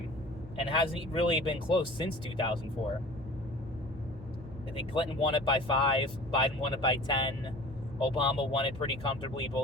and hasn't really been close since 2004. I think Clinton won it by 5, Biden won it by 10, Obama won it pretty comfortably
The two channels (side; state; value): both; normal; correlation 0.42